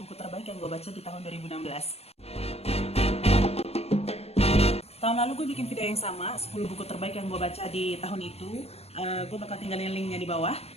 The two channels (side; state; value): right; late; 0.30 ms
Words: buku terbaik yang gue baca di tahun 2016. Tahun lalu gue bikin video yang sama, 10 buku terbaik yang gue baca di tahun itu. Gue bakal tinggalin linknya di bawah.